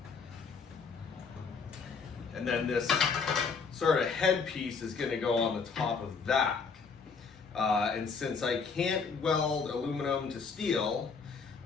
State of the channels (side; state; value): right; quieter; 5.2 dB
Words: And then this sort of headpiece is going to go on the top of that. And since I can't weld aluminum to steel,